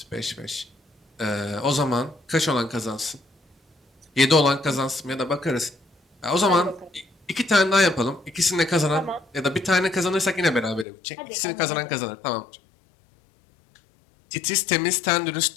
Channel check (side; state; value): right; drops out; at 10.9 s